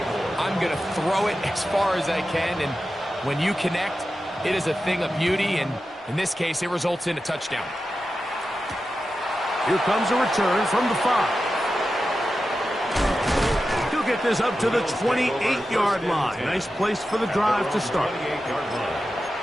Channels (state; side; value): normal; both; correlation 0.92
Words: I'm going to throw it as far as I can, and when you connect, it is a thing of beauty, and in this case, it results in a touchdown. Here comes a return from the 5. He'll get this up to the 28-yard line. Nice place for the drive to start.